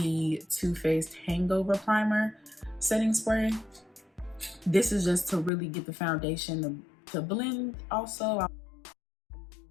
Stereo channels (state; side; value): drops out; right; at 5.5 s